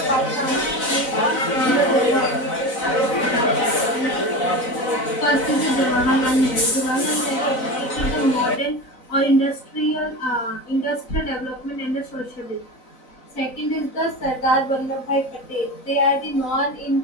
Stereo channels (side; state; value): right; late; 4.0 ms